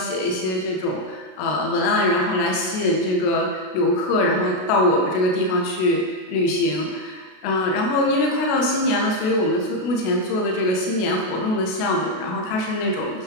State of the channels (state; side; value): late; right; 32 ms